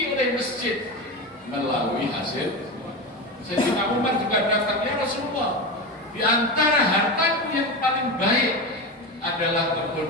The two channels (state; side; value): normal; both; correlation 0.20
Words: oleh masjid melalui hasil. Sayyidina Umar juga datang, ya Rasulullah, di antara hartaku yang paling baik adalah